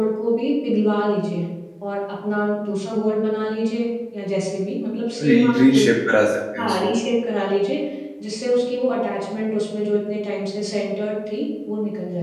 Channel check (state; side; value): identical; both; correlation 1.00